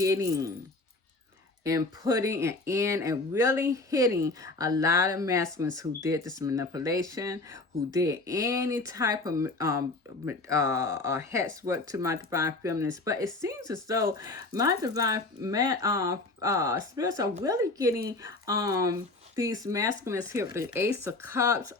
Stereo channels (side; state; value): right; quieter; 3.2 dB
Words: and putting in and really hitting a lot of masculines who did this manipulation, who did any type of hex work to my divine feminines. But it seems as though my divine spirits are really getting these masculines here with the Ace of Cups